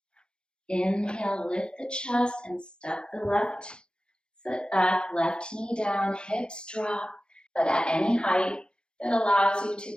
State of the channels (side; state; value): right; late; 0.050 ms